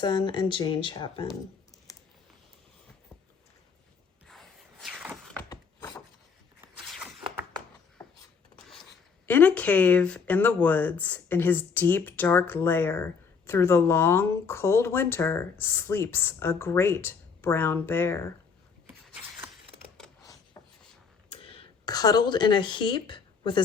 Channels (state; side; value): quieter; right; 5.7 dB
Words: and Jane Chapman. In a cave in the woods, in his deep, dark lair, through the long, cold winter, sleeps a great brown bear. Cuddled in a heap, with